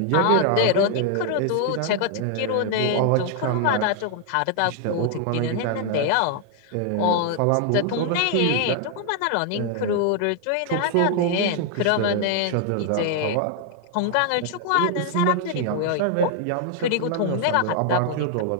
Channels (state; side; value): different; both; correlation 0.00